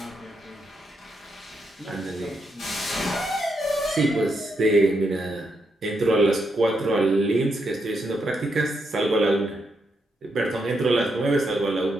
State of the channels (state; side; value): normal; both; correlation 0.81